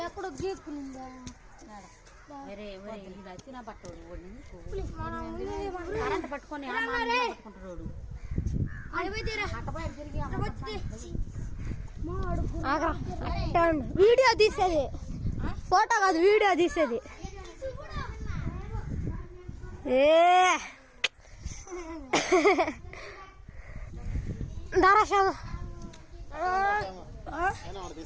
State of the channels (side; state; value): both; identical; correlation 1.00